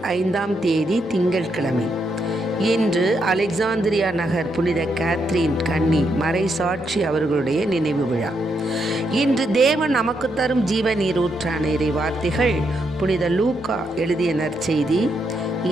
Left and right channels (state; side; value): normal; both; correlation 0.79